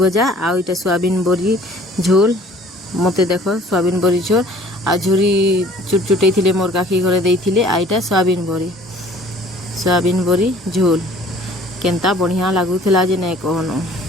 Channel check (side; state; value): both; normal; correlation 0.52